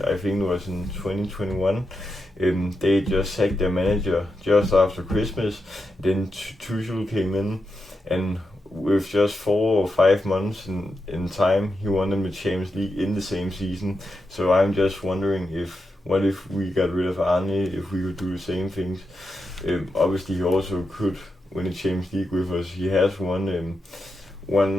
I think it was in 2021, they just sacked their manager just after Christmas. Then Tuchel came in, and with just 4 or 5 months in time, he won them the Champions League in the same season. So I'm just wondering, what if we got rid of Arne, if we could do the same things. Obviously he also could win the Champions League with us. He has won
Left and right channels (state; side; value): normal; both; correlation 0.87